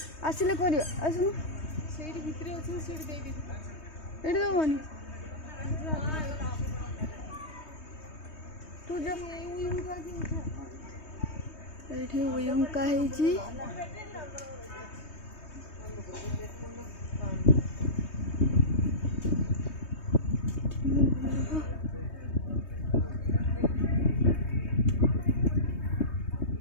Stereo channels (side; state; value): right; late; 3.2 ms